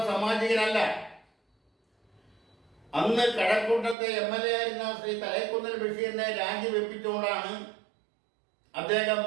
സാമാജികനല്ല. അന്ന് കഴക്കൂട്ടത്തെ MLA ആയിരുന്ന ശ്രീ തലൈക്കുന്നിൽ ബഷീറിനെ രാജിവെപ്പിച്ചുകൊണ്ടാണ് അദ്ദേഹം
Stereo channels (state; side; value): drops out; left; at 4.0 s